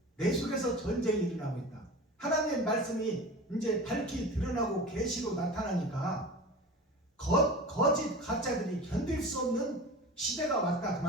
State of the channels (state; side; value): normal; both; correlation 0.34